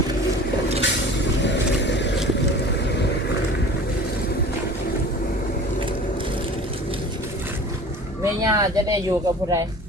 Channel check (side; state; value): both; normal; correlation 0.41